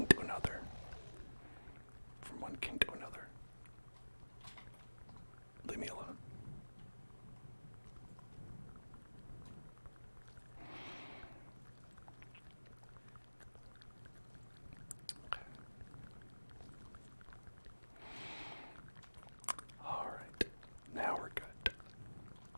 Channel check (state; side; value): inverted; both; correlation -1.00